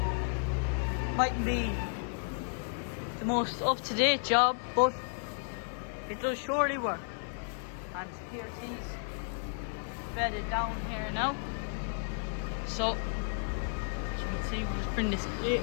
mightn't be the most up-to-date job, but it does surely work. And here's he's bedded down here now. So, as you can see, we'll just bring this plate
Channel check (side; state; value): right; silent; 56 dB below the other